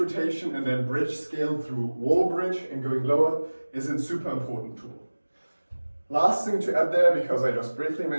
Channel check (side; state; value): both; inverted; correlation -1.00